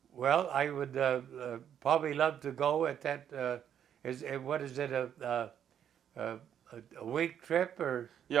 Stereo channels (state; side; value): quieter; left; 9.3 dB